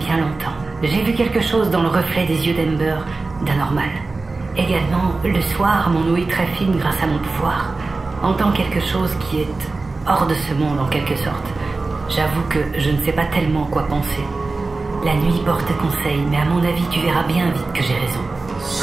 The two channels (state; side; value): quieter; left; 3.6 dB